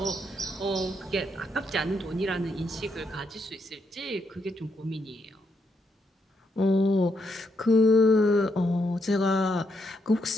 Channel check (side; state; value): both; normal; correlation 0.78